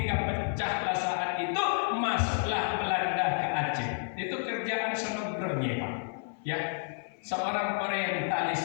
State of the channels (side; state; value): right; silent; 56 dB below the other